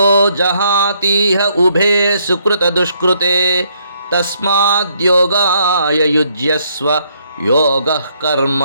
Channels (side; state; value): both; inverted; correlation -0.71